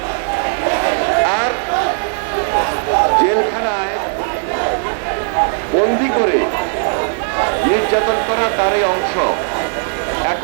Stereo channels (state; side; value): silent; left; digital silence